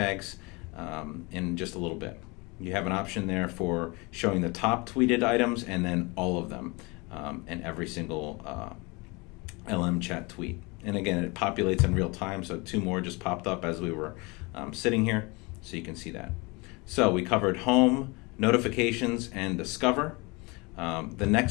in just a little bit. You have an option there for showing the top tweeted items and then all of them and every single LM chat tweet. And again, it populates in real time, so 2 more just popped up as we were sitting here, so you can see that. So we covered home, notifications, and discover. The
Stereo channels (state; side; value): quieter; right; 26.8 dB